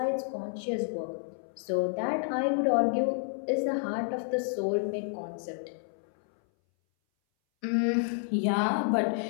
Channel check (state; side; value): silent; right; 58 dB below the other